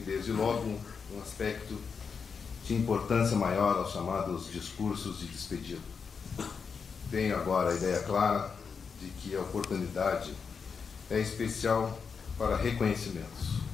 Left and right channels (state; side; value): quieter; right; 5.8 dB